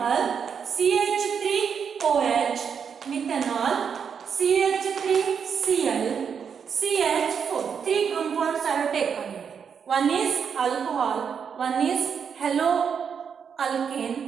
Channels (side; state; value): left; quieter; 6.9 dB